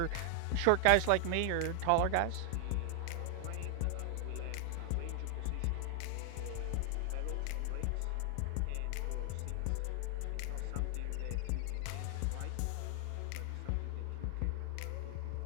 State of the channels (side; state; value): both; different; correlation 0.00